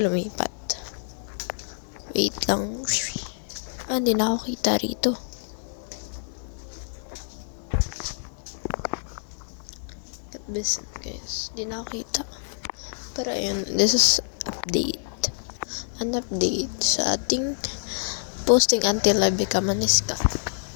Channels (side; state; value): right; silent; 60 dB below the other